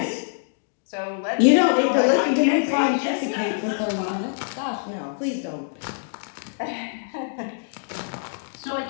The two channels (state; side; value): silent; right; digital silence